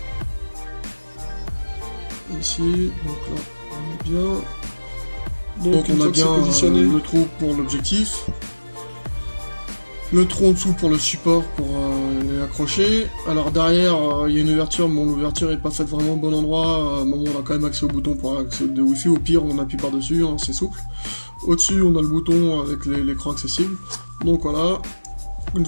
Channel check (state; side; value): inverted; both; correlation -1.00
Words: Ici, donc là on est bien. Donc on a bien le trou pour l'objectif, le trou en dessous pour le support pour les accrocher. Alors derrière il y a une ouverture, mais l'ouverture n'est pas faite vraiment au bon endroit. On a quand même accès au bouton pour accès de Wi-Fi, au pire on appuie par dessus, hein, c'est souple. Au-dessus on a le bouton avec l'écran accessible. Donc voilà, une